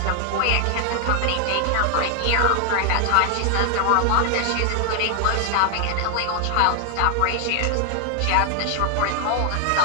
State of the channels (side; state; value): both; different; correlation 0.00